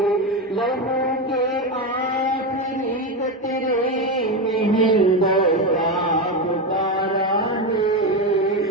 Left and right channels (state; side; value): normal; both; correlation 0.14